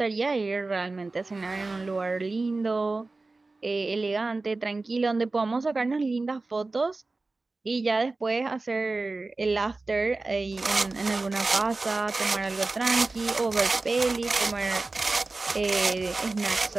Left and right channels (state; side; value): quieter; left; 3.4 dB